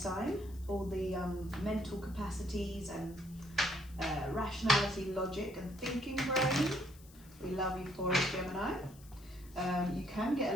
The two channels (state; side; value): noise; left; hiss, 23 dB below the sound